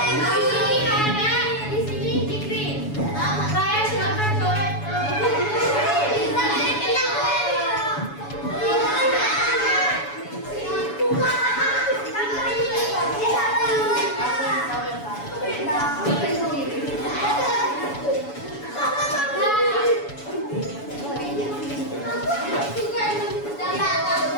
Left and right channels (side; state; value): right; late; 7.1 ms